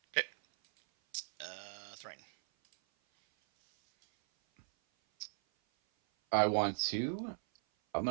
Okay. Thrain. I'm gonna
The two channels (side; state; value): left; silent; 53 dB below the other